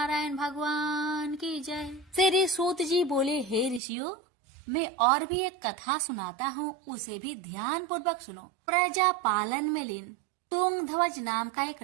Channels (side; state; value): left; drops out; at 3.8 s